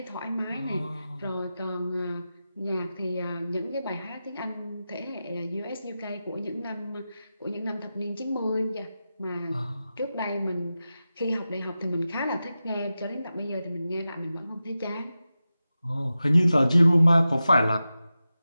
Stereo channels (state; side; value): inverted; both; correlation -0.93